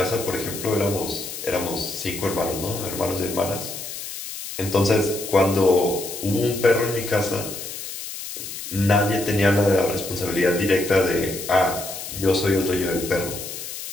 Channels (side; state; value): left; noise; hiss, 9 dB below the sound